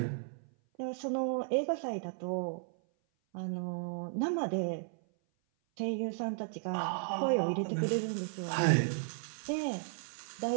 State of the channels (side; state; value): left; silent; 55 dB below the other